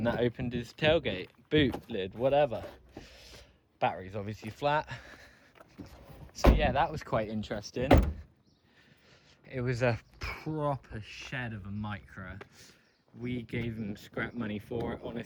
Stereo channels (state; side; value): identical; both; correlation 1.00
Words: that opened his tailgate, boot lid, whatever. Battery's obviously flat. So yeah, that was quite interesting. It was a proper shed of a Micra. We gave him scrap money for it,